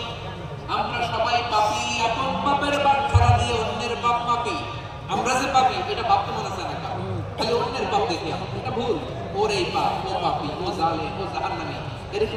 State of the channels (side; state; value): both; identical; correlation 1.00